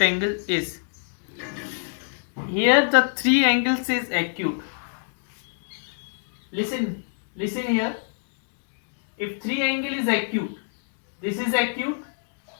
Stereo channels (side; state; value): right; silent; digital silence